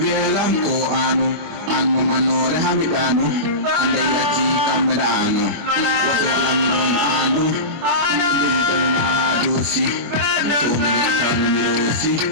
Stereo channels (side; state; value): left; late; 24 ms